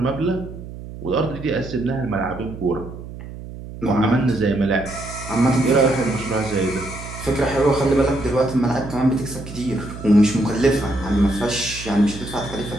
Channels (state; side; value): noise; right; hum, 12 dB below the sound